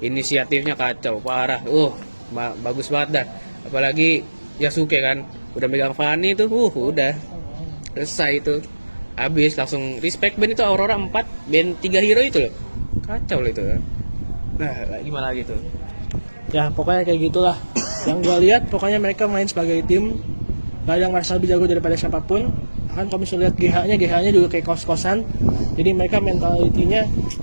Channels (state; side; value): inverted; both; correlation -1.00